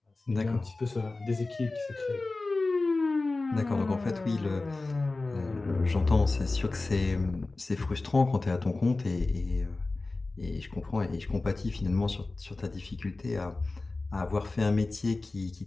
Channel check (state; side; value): quieter; right; 3.3 dB